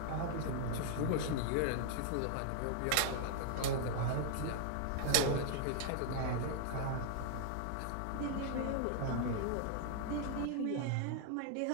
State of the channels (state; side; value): different; both; correlation -0.01